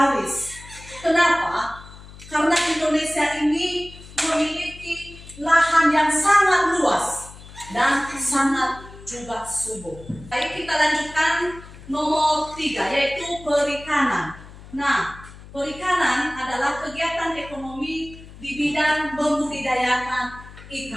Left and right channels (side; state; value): left; noise; hum, 18 dB below the sound